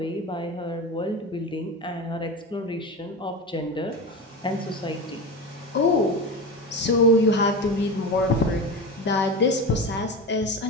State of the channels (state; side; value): normal; both; correlation 0.25